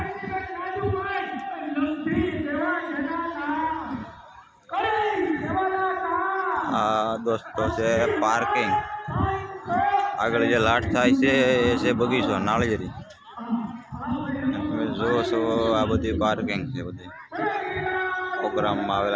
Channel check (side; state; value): both; identical; correlation 1.00